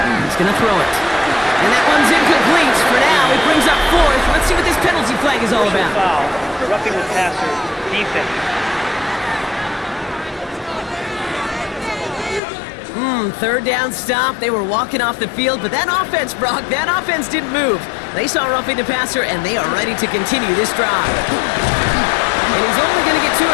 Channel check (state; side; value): drops out; right; at 12.4 s